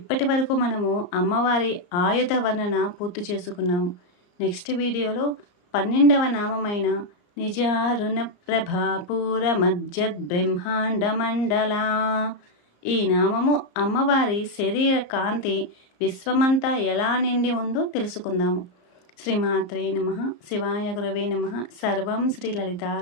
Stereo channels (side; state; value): right; late; 34 ms